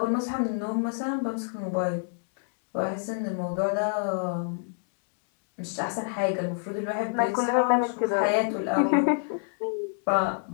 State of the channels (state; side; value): silent; right; digital silence